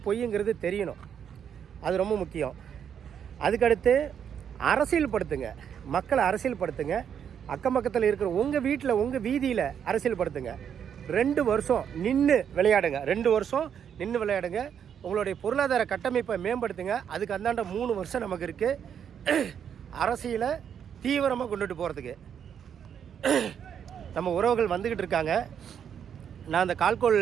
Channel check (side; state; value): left; quieter; 8.3 dB